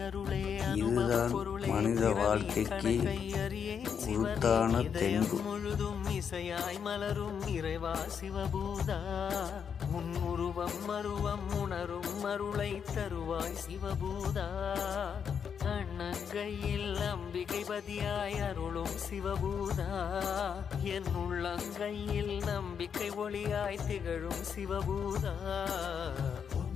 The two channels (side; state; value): right; quieter; 7.2 dB